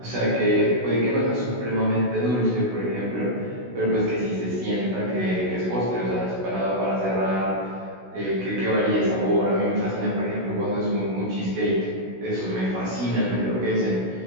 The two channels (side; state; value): left; late; 16 ms